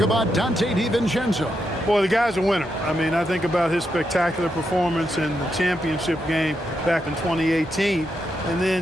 about Dante DiVincenzo? Boy, the guy's a winner. I mean, I think about his spectacular performance in the championship game back in 2018. And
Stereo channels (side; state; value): both; normal; correlation 0.83